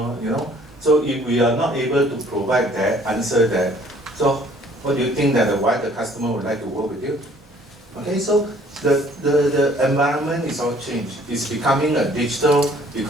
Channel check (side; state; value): both; normal; correlation 0.58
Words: you know. So if we are not able to provide that, answer that, so what do you think that why the customer would like to work with you? Okay, so the environment is all changed. It's becoming a digital